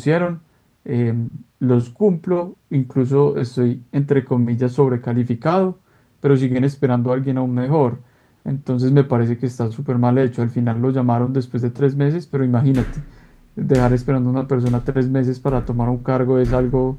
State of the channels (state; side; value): identical; both; correlation 1.00